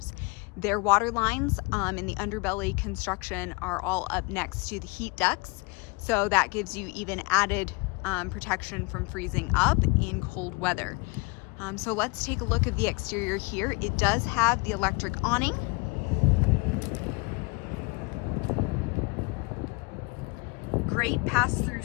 Their water lines in the underbelly construction are all up next to the heat ducts, so that gives you even added protection from freezing up in cold weather. So let's take a look at the exterior here. It does have the electric awning. Great pass-through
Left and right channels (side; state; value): right; quieter; 28.0 dB